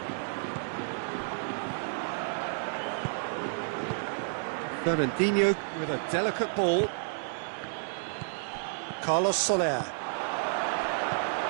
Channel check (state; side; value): silent; left; digital silence